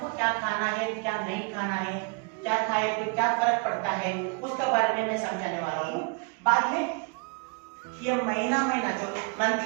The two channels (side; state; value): left; quieter; 34.8 dB